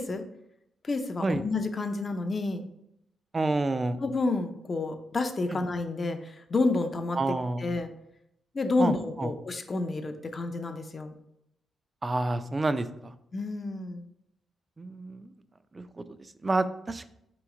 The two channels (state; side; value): normal; both; correlation 0.87